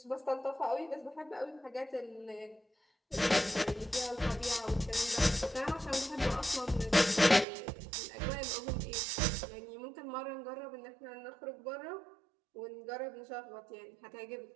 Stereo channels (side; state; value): left; drops out; at 7.5 s